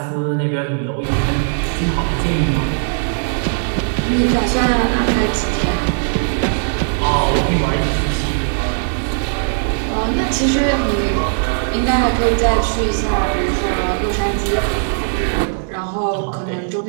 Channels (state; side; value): silent; left; digital silence